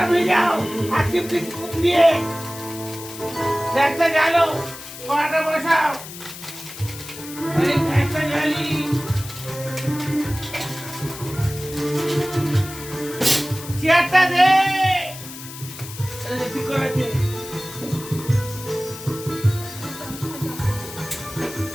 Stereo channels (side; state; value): left; noise; hiss, 13 dB below the sound